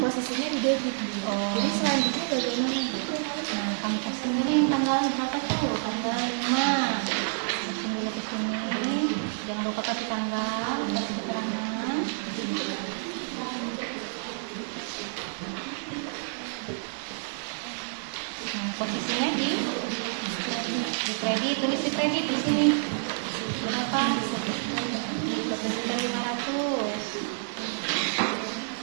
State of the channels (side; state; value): left; silent; digital silence